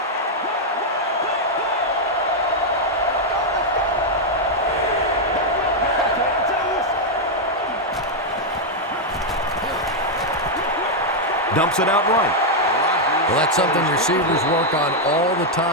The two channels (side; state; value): both; normal; correlation -0.01